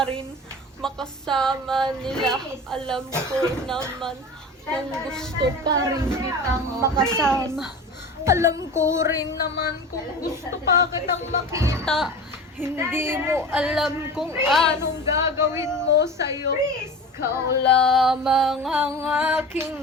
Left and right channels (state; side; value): normal; both; correlation 0.33